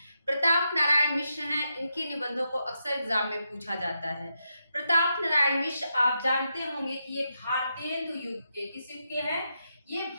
प्रताप नारायण मिश्र हैं। इनके निबंधों को अक्सर एग्जाम में पूछा जाता है। प्रताप नारायण मिश्र आप जानते होंगे कि ये भारतेंदु युग के किस युग के हैं? ये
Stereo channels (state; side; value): inverted; both; correlation -0.84